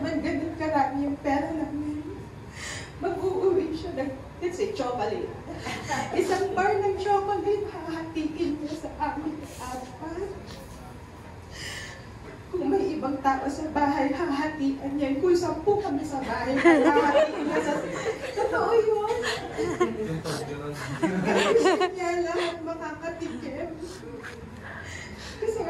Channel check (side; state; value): both; identical; correlation 1.00